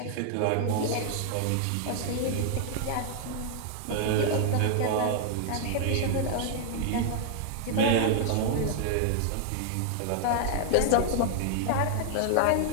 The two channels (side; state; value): both; different; correlation 0.00